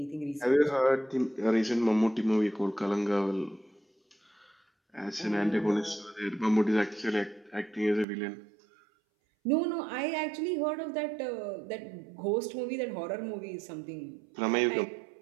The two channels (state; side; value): drops out; left; at 8.1 s